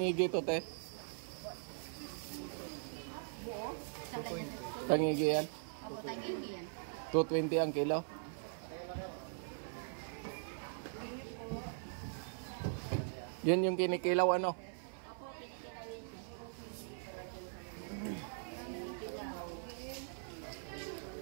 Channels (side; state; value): left; silent; 50 dB below the other